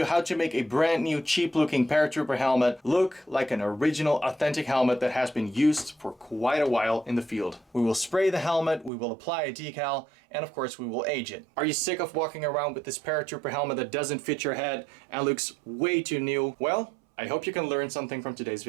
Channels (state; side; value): drops out; left; at 8.9 s